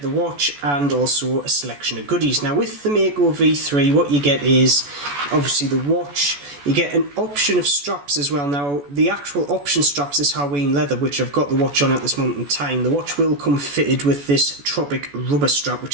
the watch and also a selection of goodies. Now with the Mako V3 what you get is obviously the watch. You get an option of straps as well. Now the actual option straps is Hawaiian leather, which I've got the watch on at this moment in time. The watch will come fitted with this tropic rubber strap,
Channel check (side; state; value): left; late; 14 ms